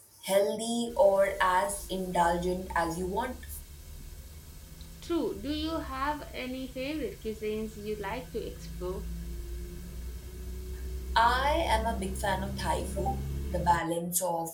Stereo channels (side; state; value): both; identical; correlation 1.00